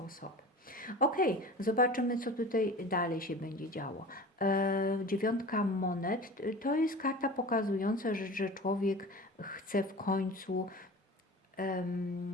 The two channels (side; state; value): both; normal; correlation 0.36